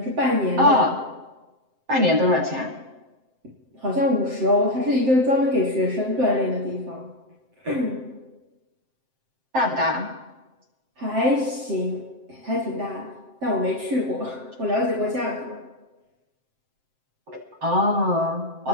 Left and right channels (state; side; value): late; left; 7.7 ms